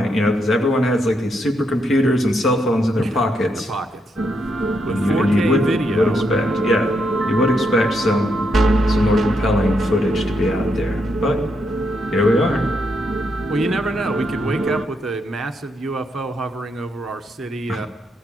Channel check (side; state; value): both; normal; correlation 0.79